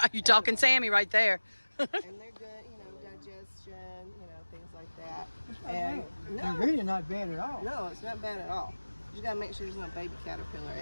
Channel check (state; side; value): inverted; both; correlation -1.00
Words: Oh, you talking Sammy right there. And they're good, digestion, things like that. And They're really not bad at all. no, it's not bad at all. You just gotta make sure there's no baby caterpillar